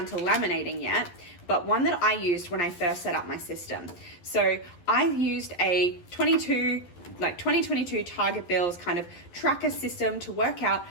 to laminating yet, but one that I used when I first set up my system. So I used a 2022 Target Bills kind of tracker system to work out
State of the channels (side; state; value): right; late; 11 ms